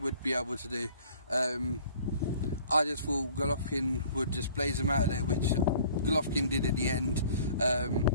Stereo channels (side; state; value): both; inverted; correlation -0.52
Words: be able to do. I just thought Golovkin would just blaze him out of there, which Golovkin did in the end.